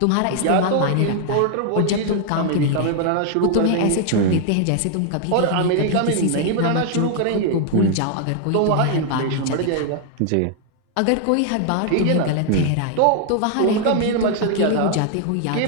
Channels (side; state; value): both; different; correlation 0.00